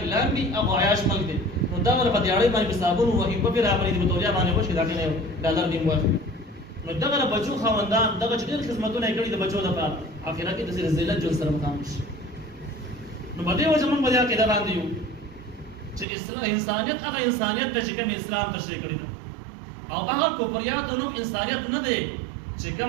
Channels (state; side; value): drops out; left; at 16.1 s